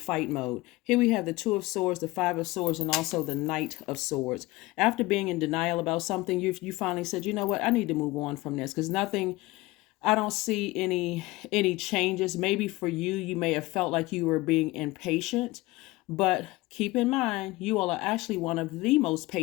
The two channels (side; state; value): right; quieter; 20.4 dB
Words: mode. Here we have the Two of Swords, the Five of Swords, and also the Knight of Swords. After being in denial about something, you finally said, you know what, I need to move on from this because I don't see any changes. Maybe for you, you may have felt like you were being impatient, but keep in mind, you all are actually one of the most